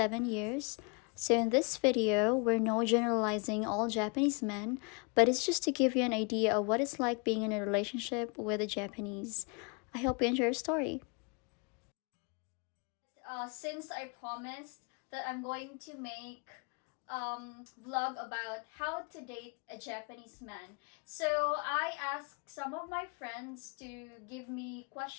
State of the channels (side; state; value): right; quieter; 34.1 dB